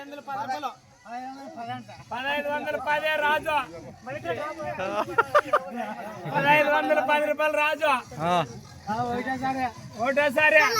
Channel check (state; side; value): identical; both; correlation 1.00